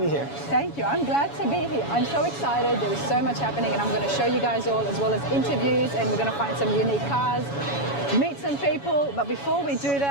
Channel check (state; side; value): late; right; 7.1 ms